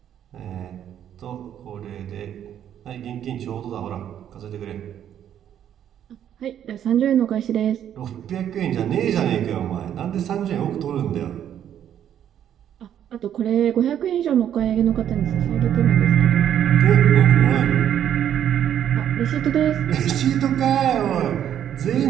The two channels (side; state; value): left; quieter; 10.0 dB